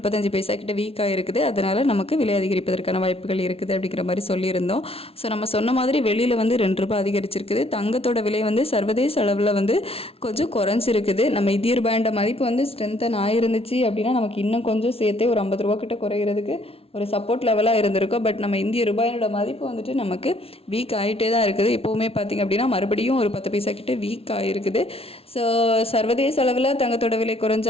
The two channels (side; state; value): right; late; 0.28 ms